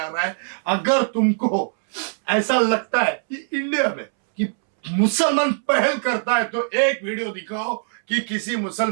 रहा है। अगर तुमको ऐसा लगता है कि इंडिया में कि मुसलमान पहल करता है तो एक वीडियो दिखाओ कि किसी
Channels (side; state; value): left; silent; 64 dB below the other